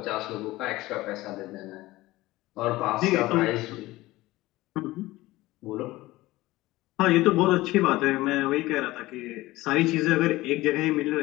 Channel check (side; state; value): right; quieter; 18.5 dB